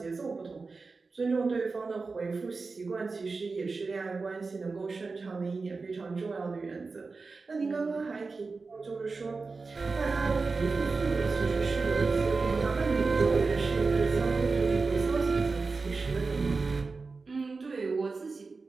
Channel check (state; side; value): quieter; left; 4.1 dB